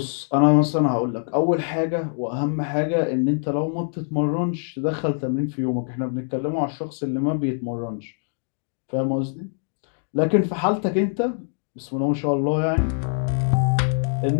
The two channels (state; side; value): silent; right; digital silence